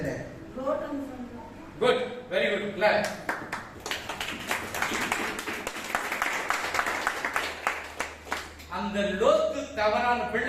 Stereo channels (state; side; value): identical; both; correlation 1.00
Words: Good, very good, clap. அந்த லோத்து தவறான